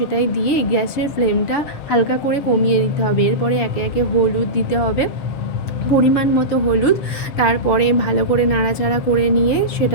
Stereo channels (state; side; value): late; right; 7.0 ms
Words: দিয়ে গ্যাসের ফ্লেমটা হালকা করে কমিয়ে দিতে হবে। এরপরে একে একে হলুদ দিতে হবে, পরিমাণ মতো হলুদ। তারপরে ভালো করে নাড়াচাড়া করে নিয়ে